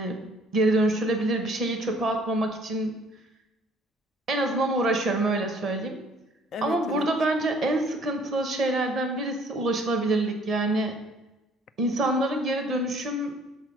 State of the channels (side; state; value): both; normal; correlation 0.58